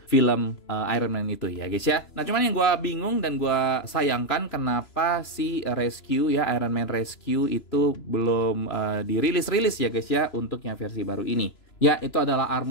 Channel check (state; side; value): late; right; 3.0 ms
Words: film Iron Man itu ya guys ya. Nah cuman yang gue bingung dan gue sayangkan kenapa si Rescue ya, Iron Man Rescue itu belum dirilis ya guys ya untuk yang versi baru ini. Ya, itu adalah